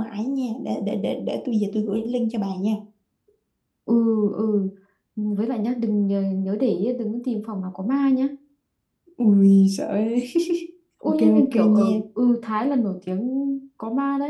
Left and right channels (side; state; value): both; identical; correlation 1.00